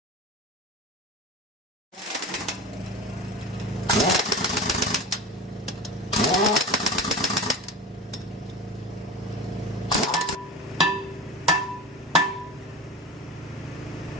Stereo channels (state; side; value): normal; both; correlation 0.32